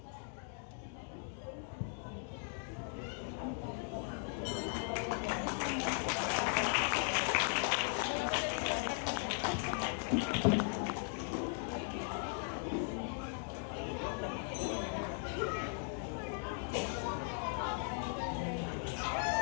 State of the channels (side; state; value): right; silent; 52 dB below the other